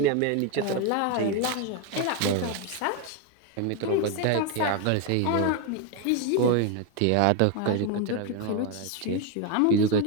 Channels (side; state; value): both; different; correlation 0.02